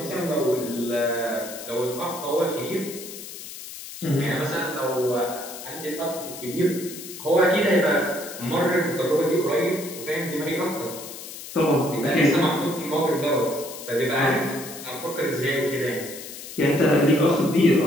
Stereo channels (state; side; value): noise; left; hiss, 12 dB below the sound